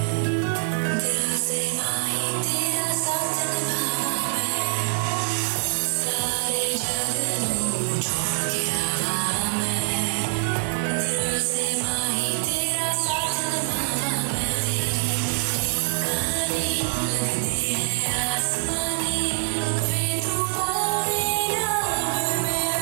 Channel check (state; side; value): silent; left; digital silence